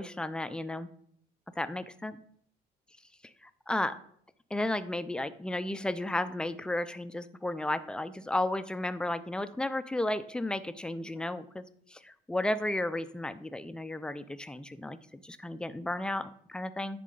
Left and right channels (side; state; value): both; normal; correlation 0.91